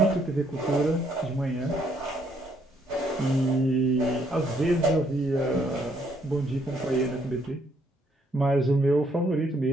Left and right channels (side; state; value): both; normal; correlation 0.70